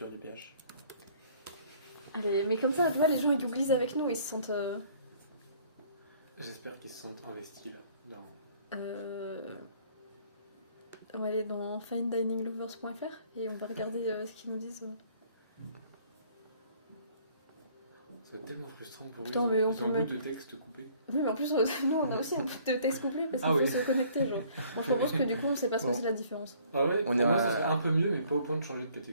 du PH. Allez, mais comme ça, tu vois, les gens ils googlisent avec nous, ils se sentent. J'espère qu'ils se sentent investis là. Dans... On va aller dans finedininglovers.fr et on va regarder ce qu'ils nous disent. Ça va être tellement frustrant pour Putain, eux. mais on Ils peut ont un bout mettre- de texte coupé. Oui, mais en plus, nous on a aussi un bout de texte couplé parce qu'il Ah faut oui. se connecter. Genre. Bon, je propose que du coup on sait pas ce que Bon. c'est la différence. Ah ouais, On pour est moi à- ça serait un peu mieux mais pas au point de changer de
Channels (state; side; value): inverted; both; correlation -0.58